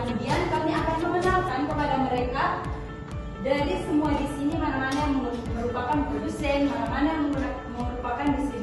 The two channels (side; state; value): both; identical; correlation 1.00